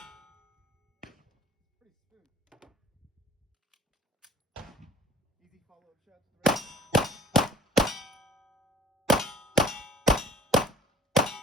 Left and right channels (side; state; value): both; normal; correlation 0.50